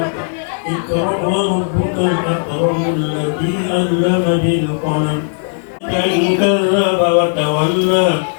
اقرأ وربك الأكرم الذي علم بالقلم إن كذب وتولى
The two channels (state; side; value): silent; right; digital silence